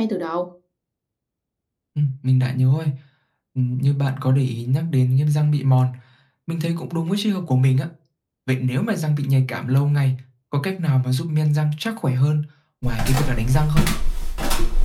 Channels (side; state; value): both; identical; correlation 1.00